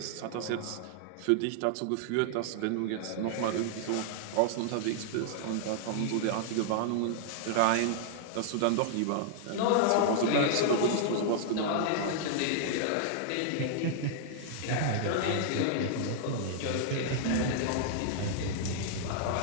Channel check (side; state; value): both; different; correlation -0.01